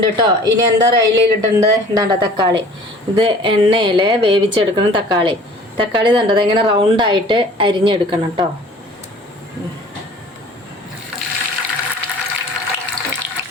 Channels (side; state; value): both; normal; correlation 0.48